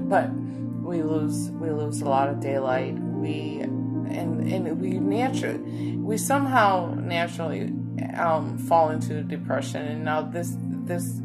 But we lose a lot of daylight. We somehow naturally fall into depression, and now this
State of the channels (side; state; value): both; identical; correlation 1.00